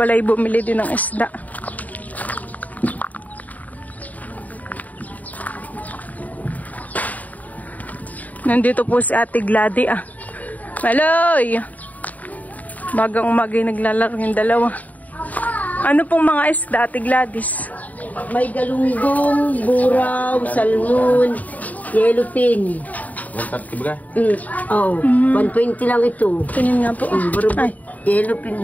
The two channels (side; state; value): right; late; 0.075 ms